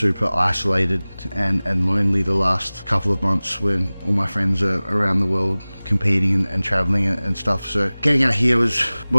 isolated and lonely the last couple of months when all my friends are around the world competing and traveling and stuff. So getting out here was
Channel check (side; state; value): both; inverted; correlation -0.99